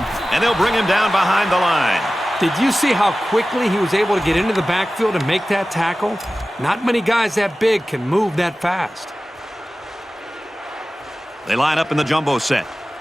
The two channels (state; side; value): normal; both; correlation 0.96